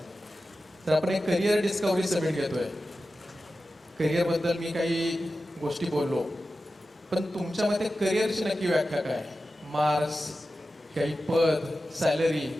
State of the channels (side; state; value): both; normal; correlation 0.93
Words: तर आपण एक करिअर डिस्कवरी समिट घेतोय. करिअरबद्दल मी काही गोष्टी बोललो, पण तुमच्या मते करिअरची नक्की व्याख्या काय? मार्क्स, काही पद, सॅलरी,